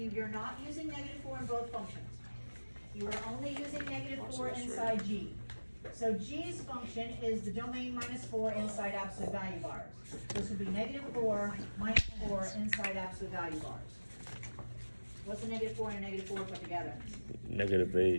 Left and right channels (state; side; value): inverted; both; correlation -1.00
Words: you're not using -4 in both functions. You are only using -4 inside G. So G's function is the domain -4 inside absolute value bars. This would be -4 minus 4 inside absolute value bars. What's a -4 and a -4 put together?